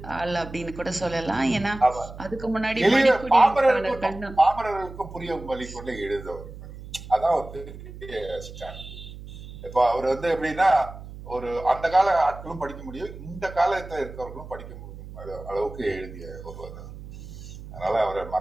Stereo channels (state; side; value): noise; right; hum, 14 dB below the sound